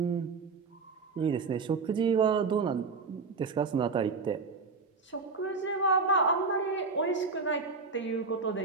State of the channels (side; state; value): left; quieter; 4.5 dB